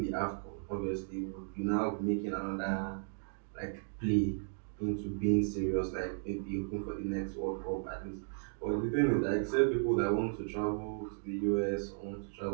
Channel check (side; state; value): left; silent; digital silence